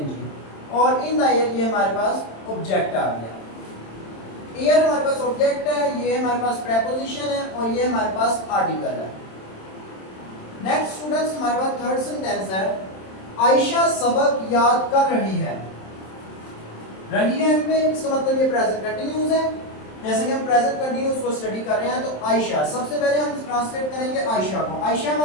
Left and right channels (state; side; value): late; right; 27 ms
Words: और इन द एयर ये हमारे पास ऑब्जेक्ट आ गया। एयर हमारे पास ऑब्जेक्ट है, ये हमारे पास प्रेपोजिशन है, और ये हमारे पास आर्टिकल है। नेक्स्ट स्टूडेंट्स हमारे पास थर्ड सेंटेंस है। आयशा सबक याद कर रही है। रही है में इसका मतलब ये प्रेजेंट कंटिन्यूस है। जैसे कि हम प्रेजेंट कंटिन्यूस को स्टडी कर रहे हैं, तो आयशा, सबसे पहले हम ट्रांसलेट करेंगे आयशा को। आयशा